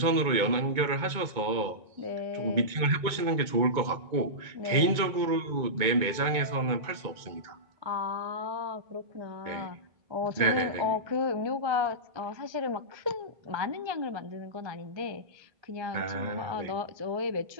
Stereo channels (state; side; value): late; left; 2.2 ms